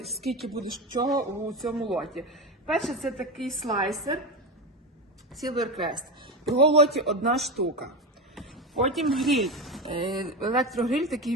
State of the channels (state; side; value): normal; both; correlation 0.19